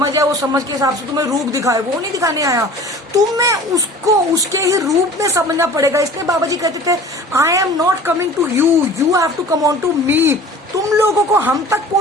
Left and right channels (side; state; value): both; normal; correlation 0.43